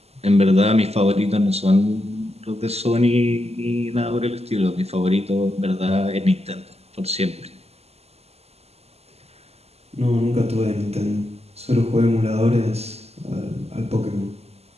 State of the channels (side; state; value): left; late; 0.30 ms